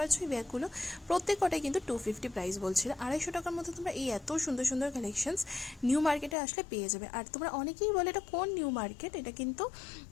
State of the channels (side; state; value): right; drops out; at 6.4 s